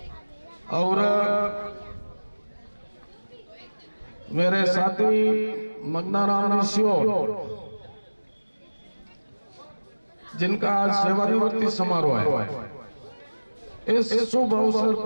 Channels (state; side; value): inverted; both; correlation -1.00